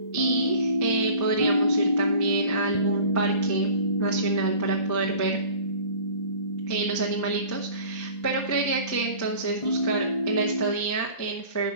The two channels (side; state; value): right; late; 1.5 ms